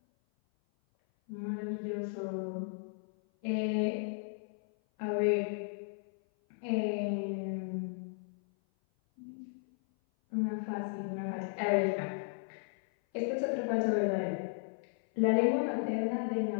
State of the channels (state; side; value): silent; right; 55 dB below the other